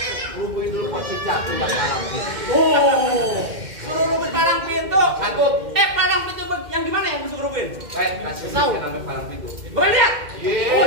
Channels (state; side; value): late; left; 2.1 ms